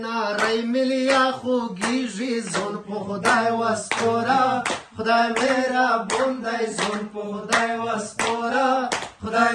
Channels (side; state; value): both; identical; correlation 1.00